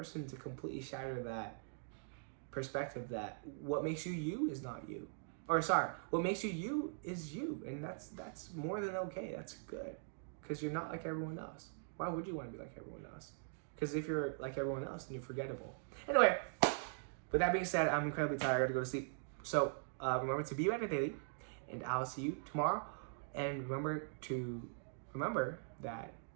to completely shatter that perspective that what makes you you is not you. Or sorry, what makes you you is you. And that's more than okay. That's good. Because you're not like everyone else. Why would you want to be like everyone else? Because if you're like everyone else, then you're forgettable. Anyway, with that being said, I'm incredibly tired. I gotta go to sleep. So remember to be better daily, and I'll see you tomorrow. And remember that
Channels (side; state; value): left; silent; digital silence